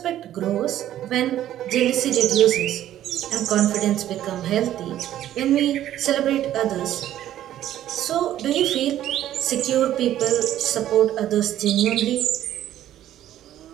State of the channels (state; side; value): quieter; left; 12.3 dB